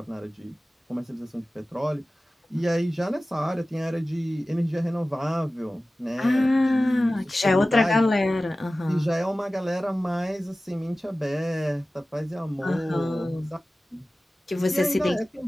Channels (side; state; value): both; normal; correlation 0.96